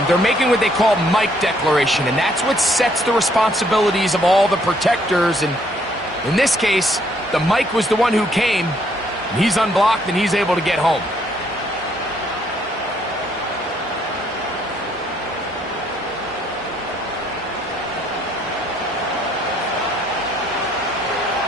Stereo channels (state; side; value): normal; both; correlation 0.68